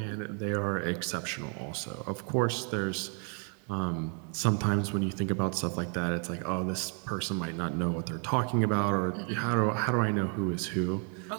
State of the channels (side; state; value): left; quieter; 39.5 dB